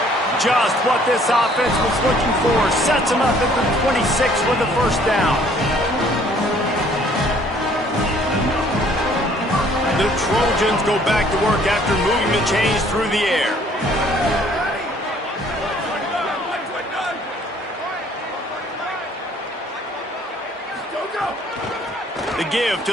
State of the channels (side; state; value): both; normal; correlation 0.59